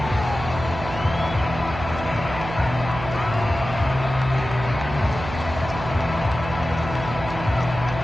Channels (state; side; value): noise; right; hum, 9 dB below the sound